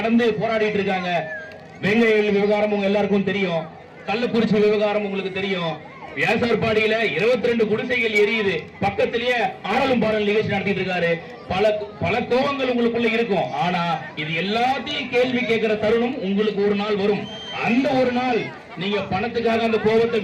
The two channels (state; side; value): identical; both; correlation 1.00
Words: போராடிட்டு இருக்காங்க. வெங்கையில் விவகாரம் உங்க எல்லாருக்கும் தெரியும், கள்ளக்குறிச்சி விவகாரம் உங்களுக்கு தெரியும். வியாசார்பாடியில 22 குடிசைகள் எரியுது, பக்கத்திலேயே ஆடலும் பாடல் நிகழ்ச்சி நடத்திட்டு இருக்காரு. பல கோபங்கள் உங்களுக்குள்ள இருக்கும். ஆனா இது எல்லாத்தையும் கேள்வி கேட்கிற தருணம் உங்களுக்கு ஒரு நாள் வரும். அந்த ஒரு நாள் நீங்க பணத்துக்காக அந்த கோபத்தை